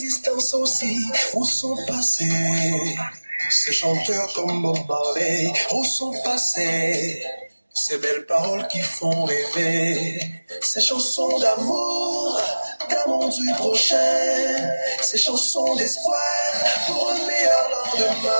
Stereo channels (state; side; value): inverted; both; correlation -1.00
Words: aussi. Où sont passés ces chanteurs comme Bob Marley? Où sont passés ces belles paroles qui font rêver? Ces chansons d'amour du prochain, ces chansons d'espoir pour un meilleur